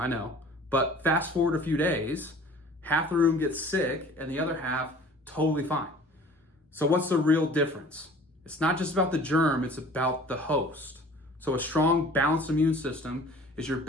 know. But fast forward a few days, half the room gets sick and the other half totally fine. So what's the real difference? It's not just about the germ, it's about the host. So a strong, balanced immune system is your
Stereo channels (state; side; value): normal; both; correlation 0.47